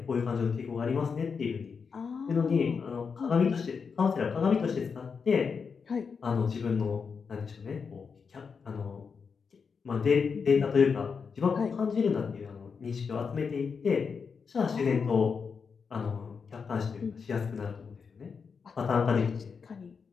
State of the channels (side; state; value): right; quieter; 5.7 dB